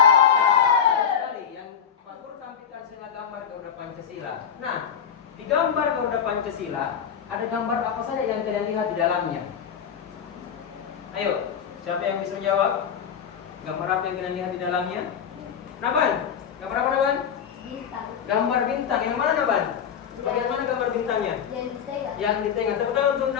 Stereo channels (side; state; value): right; quieter; 7.9 dB